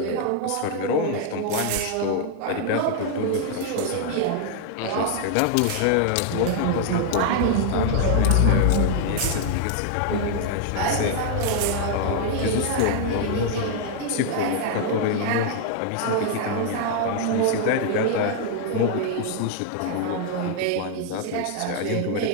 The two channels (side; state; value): both; different; correlation 0.00